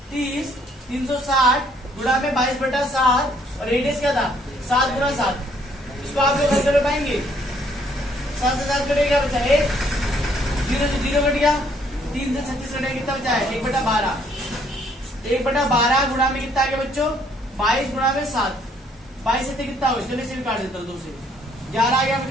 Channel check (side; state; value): both; normal; correlation 0.66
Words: 30, 360 गुणा में 22/7, और रेडियस क्या था 7 गुणा 7। इसको आप लोग हल कर पाएंगे, 7 से 7 कटेगा, बचा 1, 0 से 0 कट गया, 3 से 36 कटेगा, कितना बचा है 1/12। 1/12 गुणा में कितना आ गया बच्चों, 22 गुणा में 7, 22 से कितना हो, चलिए इसे काट देता हूँ 2 से, 11 आ गया,